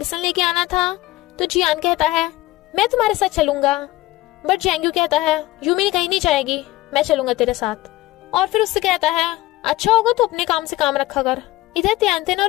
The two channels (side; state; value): right; quieter; 17.9 dB